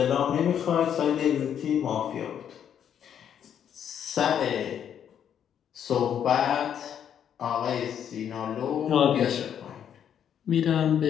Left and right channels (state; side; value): quieter; right; 9.0 dB